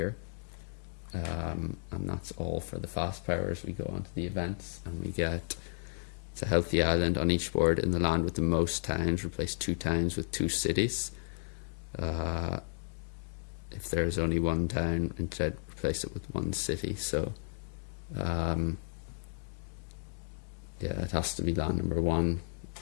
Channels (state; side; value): silent; right; 56 dB below the other